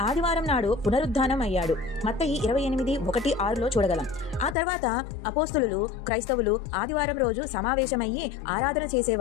ఆదివారం నాడు పునరుద్ధానం అయ్యాడు. మత్తయి 28:1-6లో చూడగలం. ఆ తర్వాత అపోస్తులు క్రైస్తవులు ఆదివారం రోజు సమావేశమయ్యి ఆరాధన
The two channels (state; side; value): drops out; right; at 4.5 s